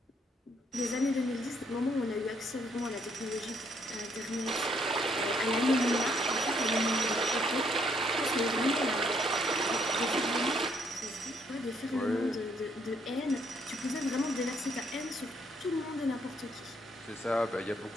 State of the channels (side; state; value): both; normal; correlation 0.69